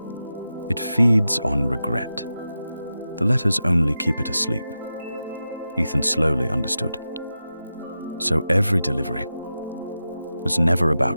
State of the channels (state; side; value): inverted; both; correlation -0.91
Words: It feeds on regret. The letters only keep it asleep." Ethan slowly understood. So every delivery was never